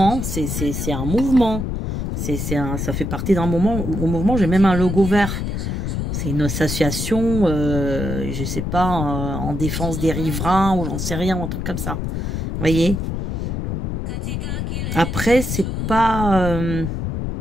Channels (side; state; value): left; noise; rumble, 2 dB below the sound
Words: C'est un mouvement. Ça fait partie d'un mouvement. J'ai même un logo vert. C'est une association, je sais pas, en défense des riverains ou j'en sais rien, un truc comme ça. Vous voyez? Après, c'est pas...